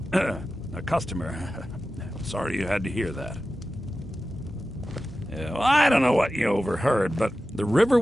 a customer. Sorry you had to hear that. Yeah, well, I don't know what you overheard, but the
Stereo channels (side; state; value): both; normal; correlation 0.94